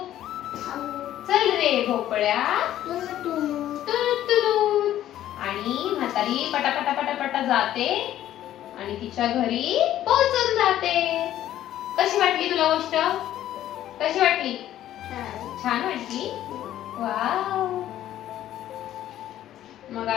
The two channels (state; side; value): quieter; right; 12.5 dB